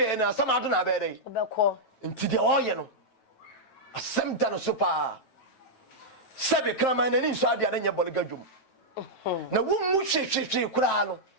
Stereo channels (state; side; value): late; right; 9.1 ms